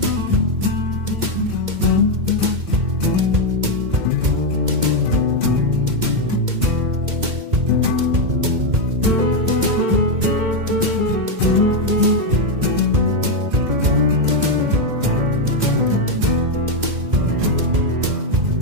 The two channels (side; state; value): left; late; 2.1 ms